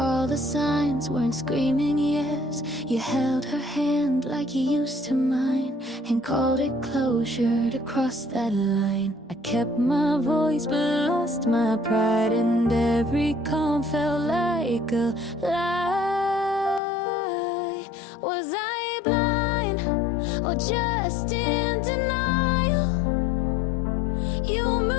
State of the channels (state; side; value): drops out; right; at 16.8 s